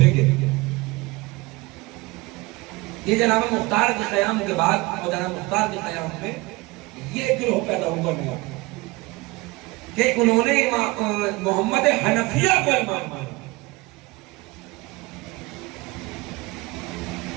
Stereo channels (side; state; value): left; quieter; 22.8 dB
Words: کے۔ یہ جناب مختار کے قیام کے بعد اور جناب مختار کے قیام میں یہ گروہ پیدا ہوا نیا کہ انہوں نے محمد حنفیہ کو امام مانا،